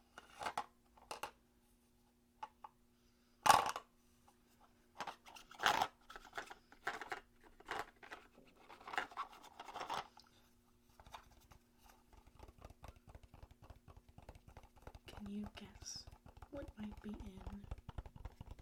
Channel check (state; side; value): identical; both; correlation 1.00